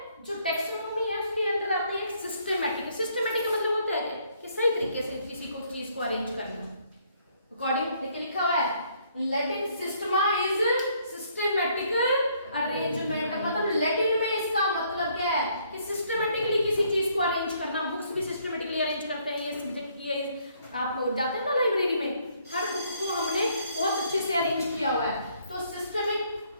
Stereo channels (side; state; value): both; inverted; correlation -0.67